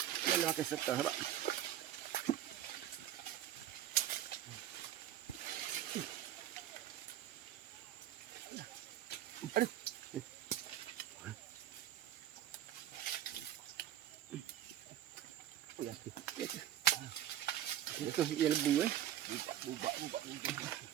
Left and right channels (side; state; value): left; quieter; 11.7 dB